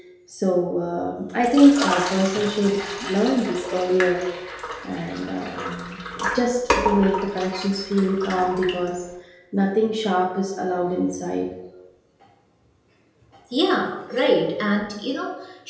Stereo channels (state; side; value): identical; both; correlation 1.00